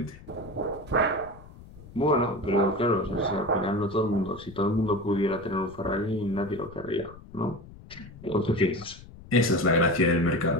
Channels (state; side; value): noise; left; rumble, 19 dB below the sound